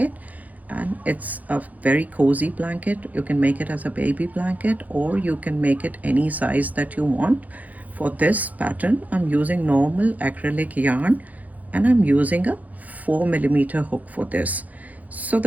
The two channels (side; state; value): left; late; 0.078 ms